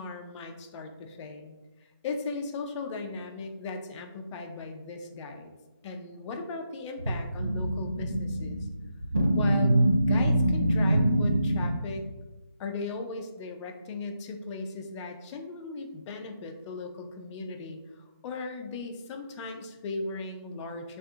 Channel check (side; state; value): both; inverted; correlation -0.81